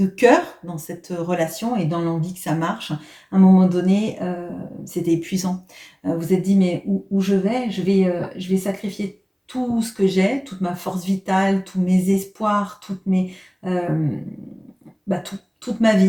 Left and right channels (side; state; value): both; identical; correlation 1.00